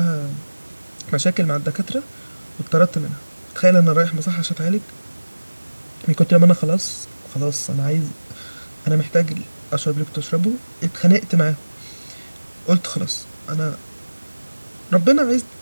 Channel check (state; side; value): inverted; both; correlation -1.00